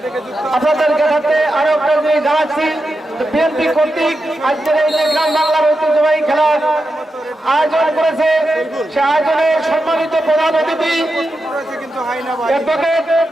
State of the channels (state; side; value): normal; both; correlation 0.89